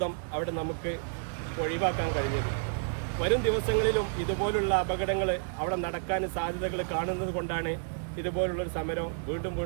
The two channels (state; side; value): silent; left; digital silence